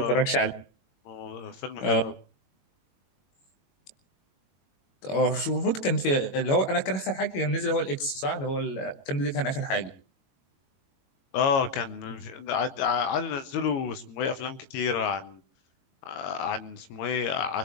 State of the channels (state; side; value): late; right; 22 ms